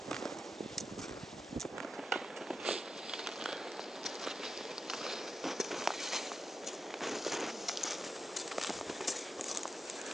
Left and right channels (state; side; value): normal; both; correlation 0.89